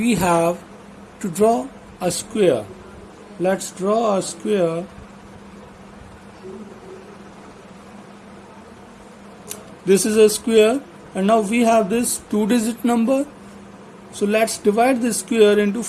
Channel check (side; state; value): both; identical; correlation 1.00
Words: have to draw a square. Let's draw a square. This is a square, and now we have this 2-digit number. So let's divide this square into